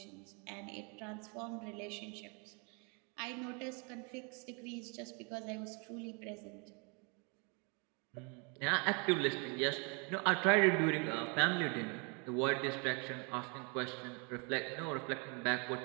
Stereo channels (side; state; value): left; quieter; 33.8 dB